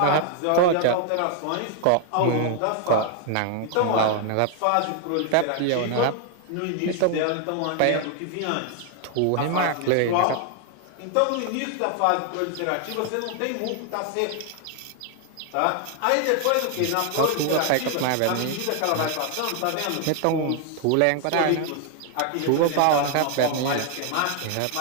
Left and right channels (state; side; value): different; both; correlation 0.00